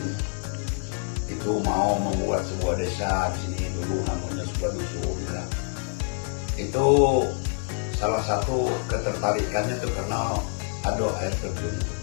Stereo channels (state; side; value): silent; right; 61 dB below the other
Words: itu mau membuat sebuah desa di sini dulu, namanya sebuah dusun ya. Itu salah satu ketertarikannya itu karena ada air terjun.